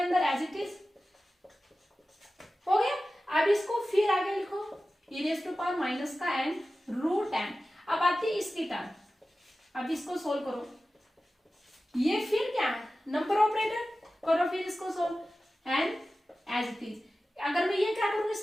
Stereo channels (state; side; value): normal; both; correlation 0.95